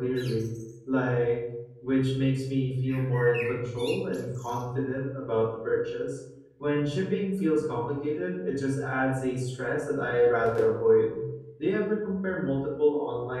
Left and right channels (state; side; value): identical; both; correlation 1.00